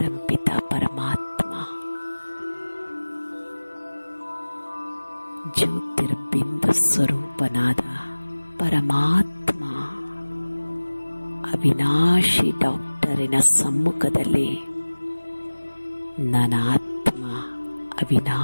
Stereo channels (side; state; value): both; inverted; correlation -1.00